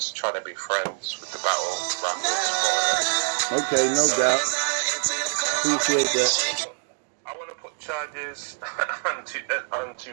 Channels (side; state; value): left; silent; digital silence